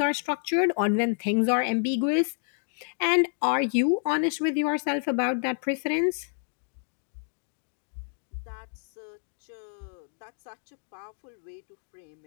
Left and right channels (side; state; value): right; silent; 59 dB below the other